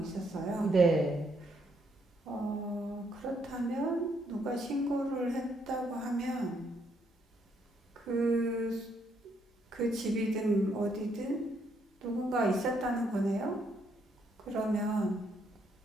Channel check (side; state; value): both; normal; correlation 0.73